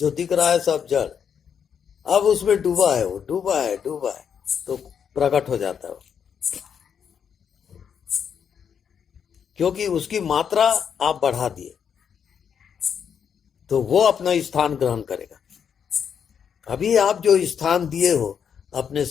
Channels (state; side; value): quieter; right; 7.6 dB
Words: दिख रहा है सब जड़। अब उसमें डूबा है, वो डूबा है तो प्रकट हो जाता है वो। क्योंकि उसकी मात्रा आप बढ़ा दिए तो वो अपना स्थान ग्रहण करेगा। अभी आप जो स्थान दिए हो अपने